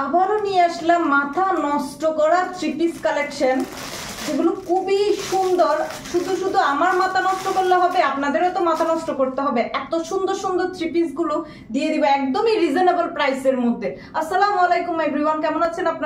আবারও নিয়ে আসলাম মাথা নষ্ট করা থ্রি পিস কালেকশন, যেগুলো খুবই সুন্দর। শুধু শুধু আমার মাথা নষ্ট করলে হবে, আপনাদেরও তো মাথা নষ্ট করতে হবে। এত সুন্দর সুন্দর থ্রি পিস গুলো দিয়ে দিব একদমই রিজনেবল প্রাইসের মধ্যে। আসসালামু আলাইকুম এভরিওয়ান, কেমন আছেন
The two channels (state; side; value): identical; both; correlation 1.00